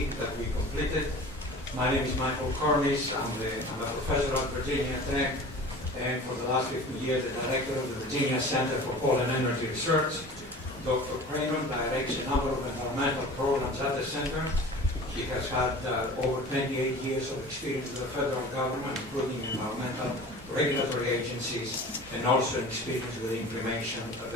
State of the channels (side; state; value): both; normal; correlation 0.40